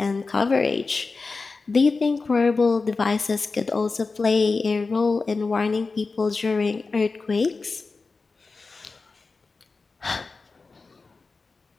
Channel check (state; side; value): quieter; right; 4.1 dB